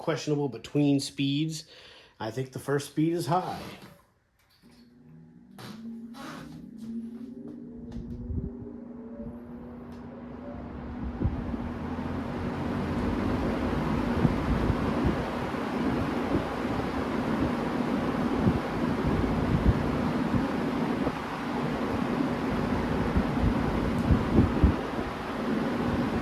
between speeds. I think the first speed is high.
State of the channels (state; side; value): identical; both; correlation 1.00